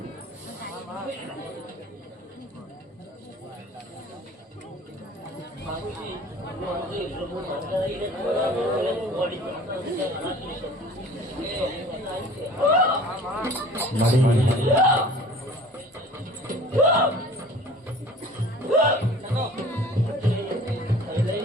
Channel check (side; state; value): both; normal; correlation 0.46